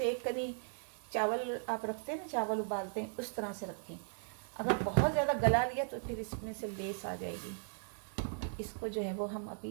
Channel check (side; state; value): left; silent; digital silence